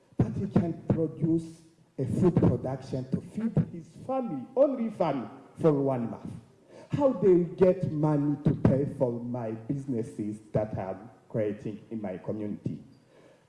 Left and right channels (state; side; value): identical; both; correlation 1.00